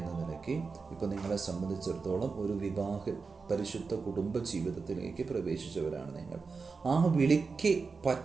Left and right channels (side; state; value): left; quieter; 4.7 dB